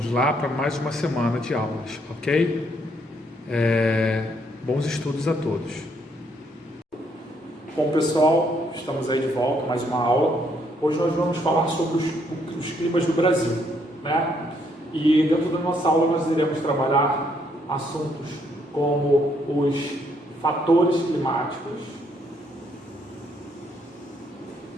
lá para mais uma semana de aulas, ok? Bons estudos a todos. Bom pessoal, estamos aí de volta, mais uma aula. Hoje nós vamos falar sobre os climas do Brasil, né? E dentro da nossa aula nós iremos trabalhar assuntos como os fatores climáticos,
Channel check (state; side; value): normal; both; correlation 0.71